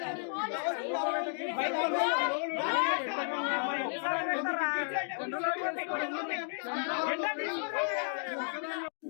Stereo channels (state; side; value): silent; right; digital silence